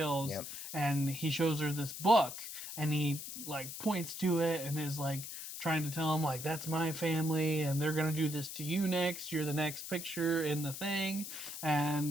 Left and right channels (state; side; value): noise; left; hiss, 8 dB below the sound